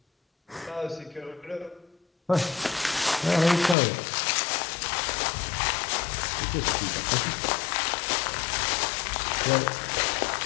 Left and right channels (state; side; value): drops out; right; at 3.8 s